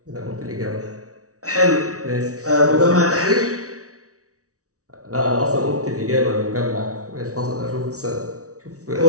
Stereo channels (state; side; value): late; left; 0.66 ms